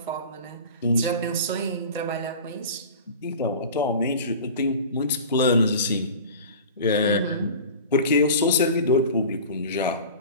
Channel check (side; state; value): both; inverted; correlation -0.37